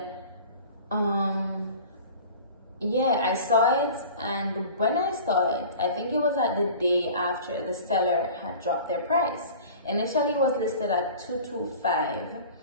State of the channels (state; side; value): inverted; both; correlation -0.41